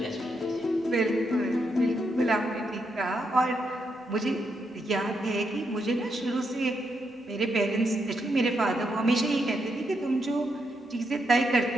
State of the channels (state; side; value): normal; both; correlation 0.81